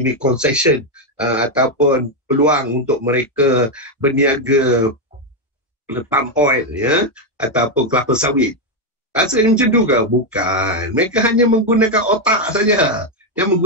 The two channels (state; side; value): normal; both; correlation 0.04